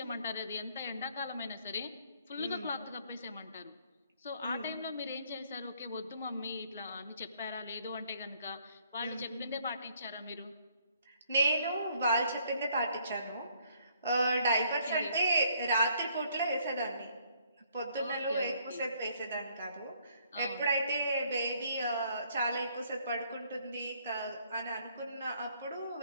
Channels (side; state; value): both; inverted; correlation -0.66